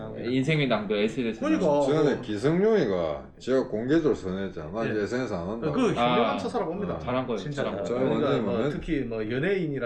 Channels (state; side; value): identical; both; correlation 1.00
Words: 인생의 낭비 SNS. 그러니까. 전에 기성용이가 제가 공개적으로 선언했잖아. 나 이제 예. SNS 안 한다고. 그 현명한 아, 처사라 봅니다. 잘한 거예요. 진짜. 잘한 거예요. 그러니까 완전히 뭐 뭐 특히 뭐